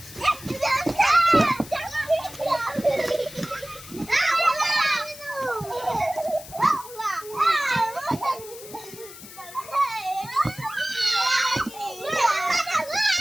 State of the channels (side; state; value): left; noise; hiss, 16 dB below the sound